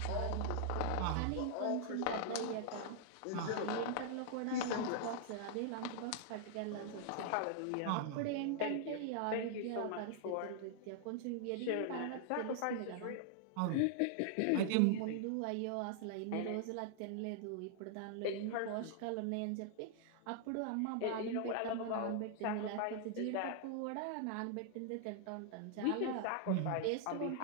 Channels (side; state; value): both; different; correlation -0.01